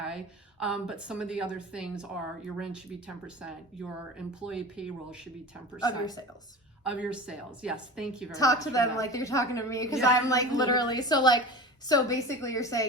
But some of the other things are your rent should be 10%, your employee payroll should be 10%. Of your sales. Of your sales, yes, thank you very much. Talk to them like you're talking to me because I'm like literally, so basically you're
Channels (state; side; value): normal; both; correlation 0.32